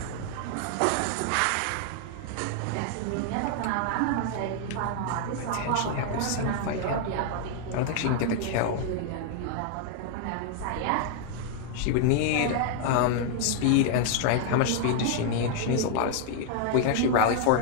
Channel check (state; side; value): different; both; correlation 0.00